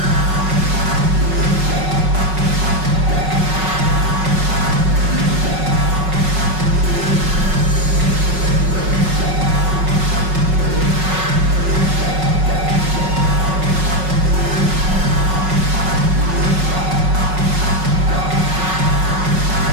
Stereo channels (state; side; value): late; left; 5.4 ms